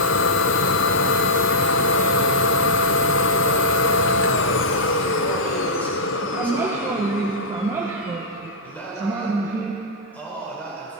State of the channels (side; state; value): both; normal; correlation -0.11